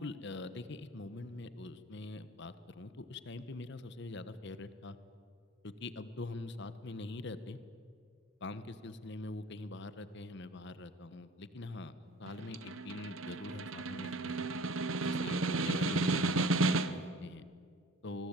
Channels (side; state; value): both; normal; correlation 0.46